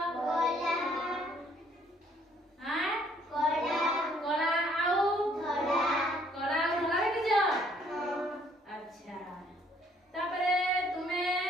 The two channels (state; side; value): normal; both; correlation 0.64